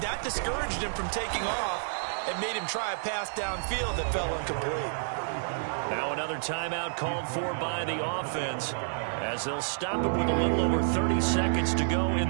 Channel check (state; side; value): silent; left; digital silence